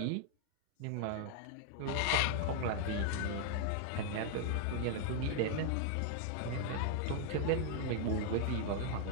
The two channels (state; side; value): different; both; correlation 0.00